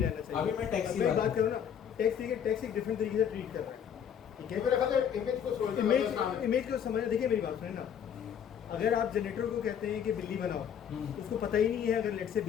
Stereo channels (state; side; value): quieter; right; 8.4 dB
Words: रहना चाहिए। अभी मैं टेक्स्ट की अब बात बात करूँ ना, टेक्स्ट देखिए, टेक्स्ट एक डिफरेंट तरीके से ट्रीट कर रहा है, ठीक है। मेरे ख्याल से इमेज को सोचना इमेज को समझ, देखिए मेरी बात सुने ना, अगर आप जनरेटर को कहते हैं कि बिल्ली बनाओ, उसको पता ही नहीं है अगर लेट से